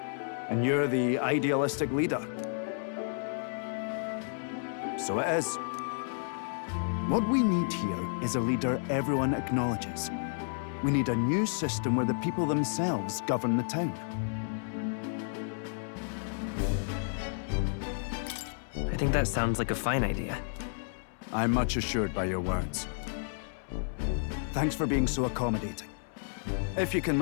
And you're the idealistic leader. So it is. What we need here is a leader everyone acknowledges. We need a new system where the people themselves govern the town. I think that sounds like a fine idea. I'm much assured by your words. Thanks for being so accommodating. If you can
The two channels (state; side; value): silent; right; 57 dB below the other